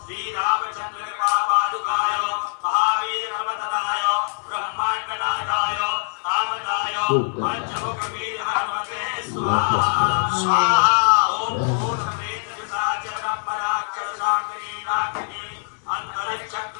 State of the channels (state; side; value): silent; right; digital silence